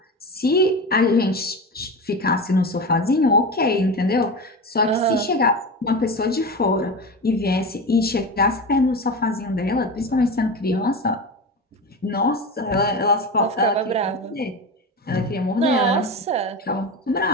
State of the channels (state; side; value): normal; both; correlation 0.24